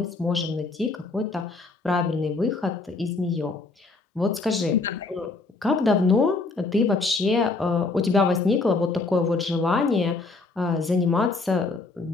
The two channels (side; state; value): right; quieter; 3.7 dB